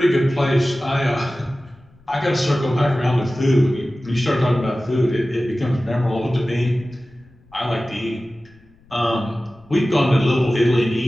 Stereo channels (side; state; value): left; noise; rumble, 29 dB below the sound